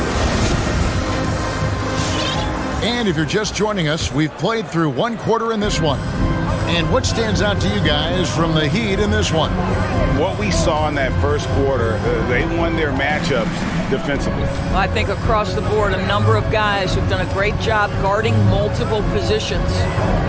And if you're just joining us, we've played through 1 quarter in this one. And what stands out to you guys from the Heat in this one? What we saw in that first quarter, they won their matchups defensively. I think across the board, a number of guys who've done a great job guarding multiple positions.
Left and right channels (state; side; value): identical; both; correlation 1.00